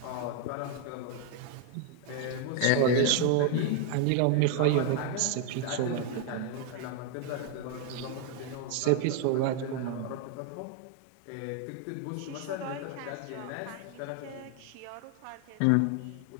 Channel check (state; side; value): different; both; correlation 0.00